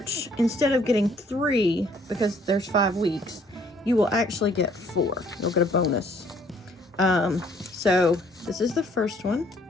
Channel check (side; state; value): both; normal; correlation 0.62